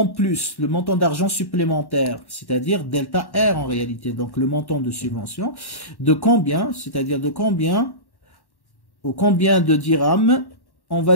plus, le montant d'argent supplémentaire, c'est-à-dire delta R en réalité, donc le montant de subvention, de combien, c'est-à-dire de combien, ou combien de dirhams on va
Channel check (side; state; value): right; late; 1.1 ms